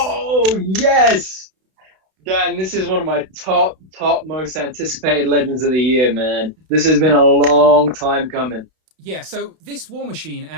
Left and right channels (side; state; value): left; late; 32 ms